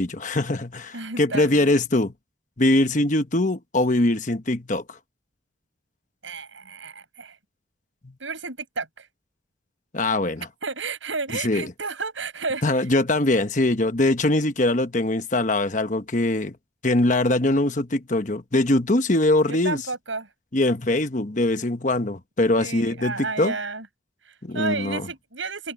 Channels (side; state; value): both; normal; correlation 0.43